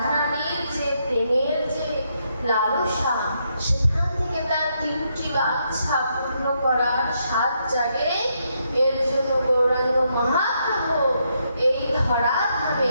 যে প্রেমের যে লালসা, সেখান থেকে তার তিনটি বাঞ্ছা পূর্ণ করার সাত জাগে। এর জন্য গৌরাঙ্গ মহাপ্রভু এই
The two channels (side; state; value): both; inverted; correlation -0.78